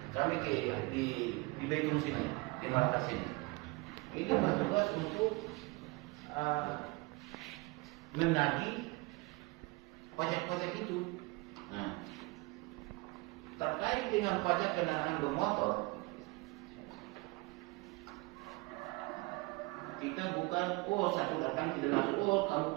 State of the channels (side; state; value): left; quieter; 25.4 dB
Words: kami di Betung sini, di Makassar sini. Ini bertugas untuk menagih pajak-pajak itu. Nah, terkait dengan pajak kendaraan bermotor, kita bukan satu datang tidak langsung kamu